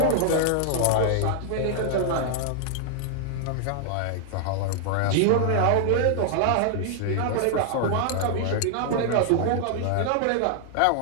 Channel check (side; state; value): both; different; correlation -0.01